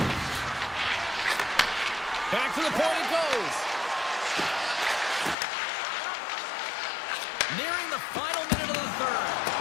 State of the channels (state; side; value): drops out; right; at 5.4 s